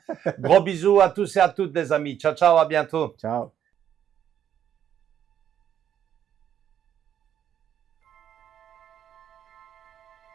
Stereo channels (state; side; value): quieter; left; 9.6 dB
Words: Gros bisous à tous et à toutes, les amis. Ciao, ciao, à bientôt. Ciao.